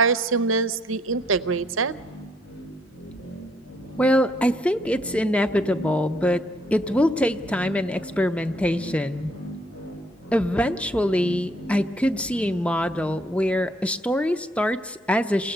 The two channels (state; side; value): normal; both; correlation 0.68